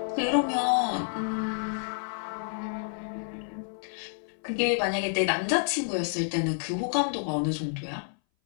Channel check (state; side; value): silent; right; 58 dB below the other